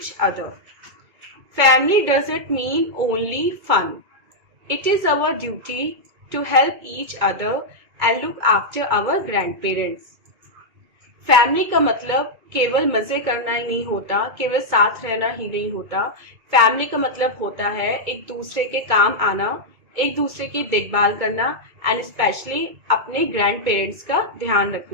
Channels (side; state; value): left; late; 2.3 ms